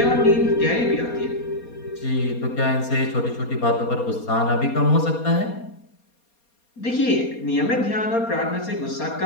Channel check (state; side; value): late; right; 4.3 ms